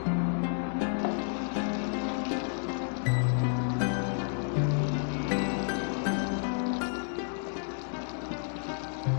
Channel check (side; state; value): right; silent; digital silence